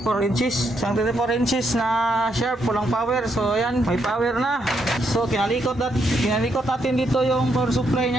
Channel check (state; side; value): normal; both; correlation 0.77